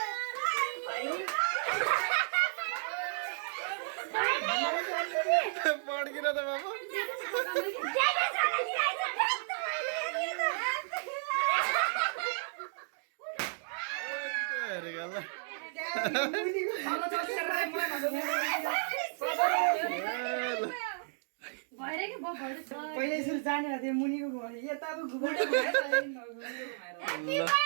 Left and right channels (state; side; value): silent; left; digital silence